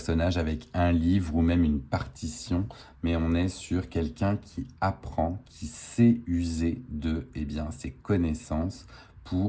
avec un livre ou même une partition, mais on est sur quelqu'un qui apprend, qui sait user de ses connaissances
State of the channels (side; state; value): both; identical; correlation 1.00